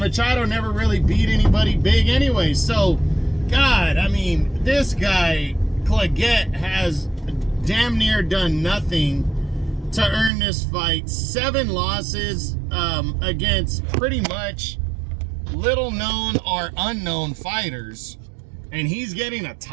Machado never really beat anybody big anyway. So, God, I mean, this guy, Clagget, has damn near done nothing to earn this fight. 7 losses against pretty much little known or unknown fighters, and he's getting a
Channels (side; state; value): left; drops out; at 10.3 s